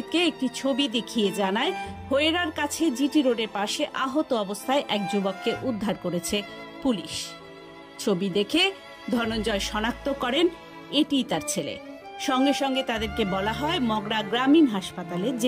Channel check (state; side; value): identical; both; correlation 1.00